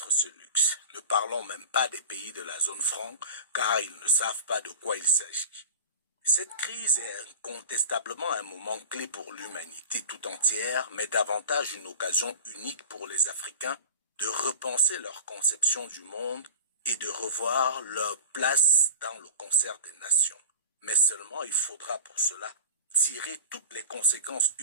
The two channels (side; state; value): both; inverted; correlation -0.32